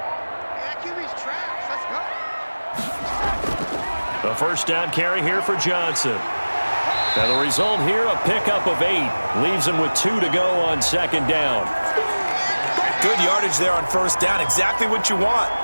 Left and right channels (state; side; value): inverted; both; correlation -1.00